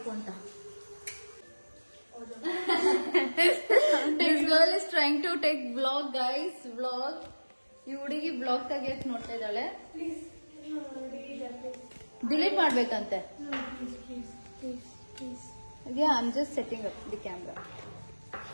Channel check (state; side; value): inverted; both; correlation -1.00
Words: ಅಂತ. This girl is trying to take vlog, guys. Vlog. ಈ ಹುಡುಗಿ ಬ್ಲಾಗ್ ತೆಗಿಯಕ್ ನೋಡ್ತಾ ಇದ್ದಾಳೆ. Delete ಮಾಡ್ಬೇಕಂತೆ. Yeah, I'm just setting up the camera.